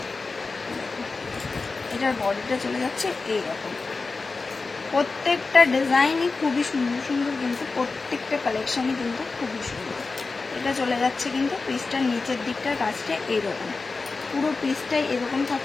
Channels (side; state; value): right; quieter; 4.0 dB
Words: এটার বডিটা চলে যাচ্ছে এইরকম। প্রত্যেকটা ডিজাইনই খুবই সুন্দর সুন্দর, কিন্তু প্রত্যেকটা কালেকশনই কিন্তু খুবই সুন্দর। এটা চলে যাচ্ছে কিন্তু পিসটার নিচের দিকটার কাজটা এইরকম, পুরো পিসটাই এরকম